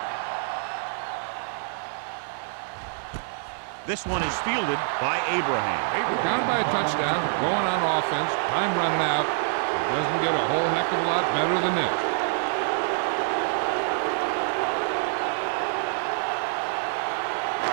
This one is fielded by Abraham. Down by a touchdown, going on offense, time running out. It doesn't get a whole heck of a lot better than this.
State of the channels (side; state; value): left; silent; 61 dB below the other